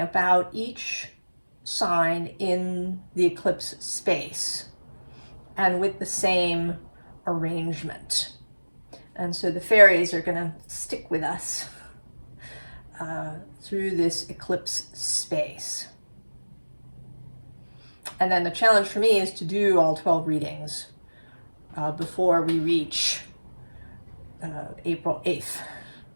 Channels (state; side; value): inverted; both; correlation -1.00